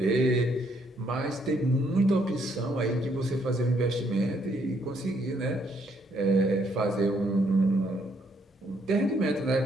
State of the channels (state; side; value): normal; both; correlation 0.71